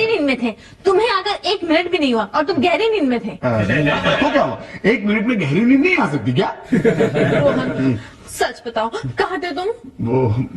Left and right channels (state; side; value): identical; both; correlation 1.00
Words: नींद में थे। तुम्हें आकर 1 मिनट भी नहीं हुआ और तुम गहरी नींद में थे। तो क्या हुआ? 1 मिनट में गहरी नींद नहीं आ सकती क्या? रोहन सच बताओ, कहाँ थे तुम? वो